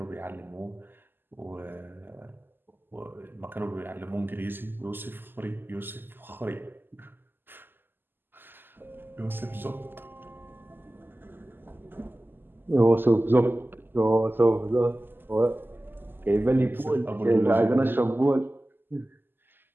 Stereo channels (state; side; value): late; left; 0.096 ms